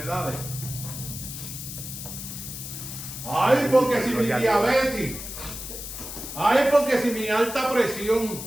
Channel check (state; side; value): noise; left; hiss, 9 dB below the sound